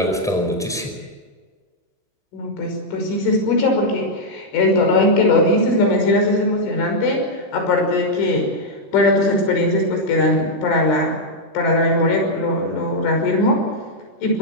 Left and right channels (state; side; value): normal; both; correlation -0.04